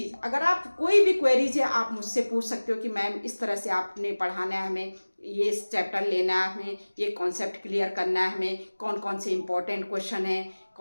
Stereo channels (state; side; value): inverted; both; correlation -1.00